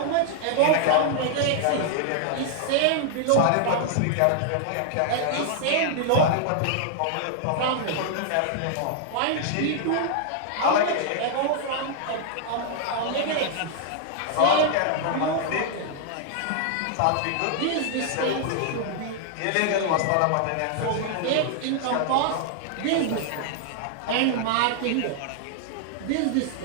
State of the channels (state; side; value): different; both; correlation -0.01